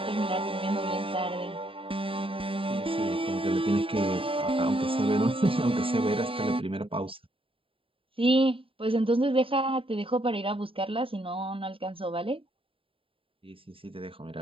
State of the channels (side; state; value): left; late; 0.26 ms